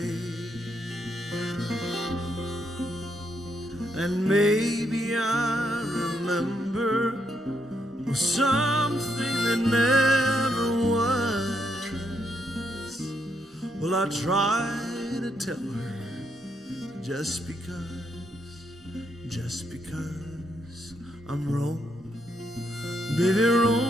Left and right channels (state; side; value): normal; both; correlation 0.77